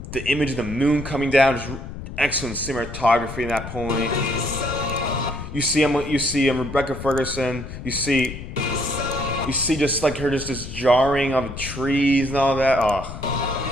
The image of the moon coming down, just excellent cinematography in that point. You see Rebecca Ferguson. You see just like her, just this jarring of the trees and all that. Oh.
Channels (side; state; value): left; noise; rumble, 10 dB below the sound